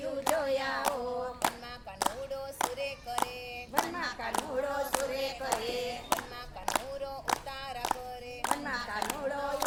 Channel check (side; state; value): both; identical; correlation 1.00